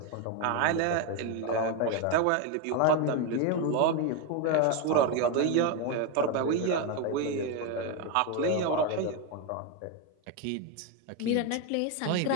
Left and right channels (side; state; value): both; different; correlation 0.02